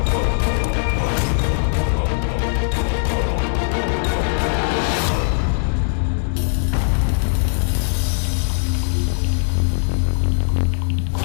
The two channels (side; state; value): right; silent; digital silence